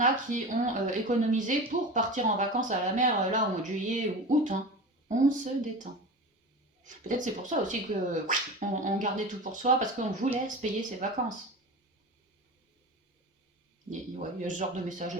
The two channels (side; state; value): both; normal; correlation 0.30